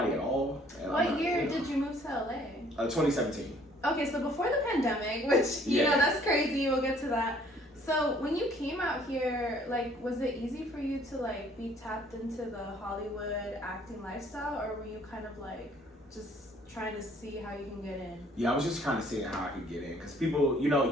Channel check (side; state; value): both; normal; correlation 0.59